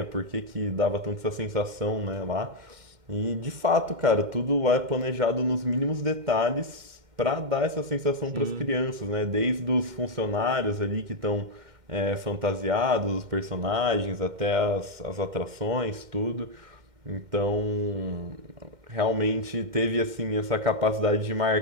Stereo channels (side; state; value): left; late; 2.1 ms